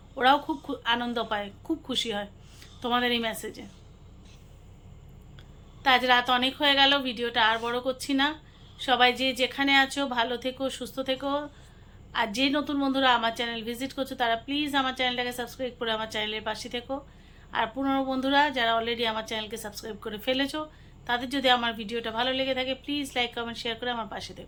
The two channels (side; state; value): both; identical; correlation 1.00